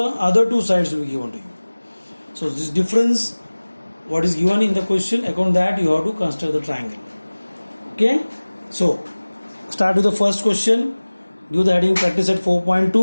two sides will be given to you. So this difference, what is given in the question, according to that you have to construct the triangle. Okay, so start with the first question. Give the heading practice at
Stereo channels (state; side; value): inverted; both; correlation -1.00